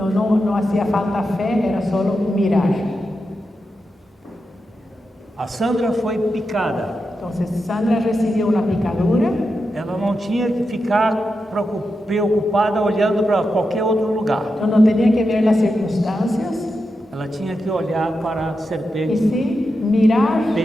hacía falta fe, era solo mirar. A Sandra foi picada. Entonces Sandra recibió una picadura, Ela não tinha que ficar preocupada olhando para qualquer outro lugar. no tenía que ver las circunstancias, Ela tinha que olhar para a y serpente sí mirar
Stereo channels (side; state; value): both; normal; correlation 0.88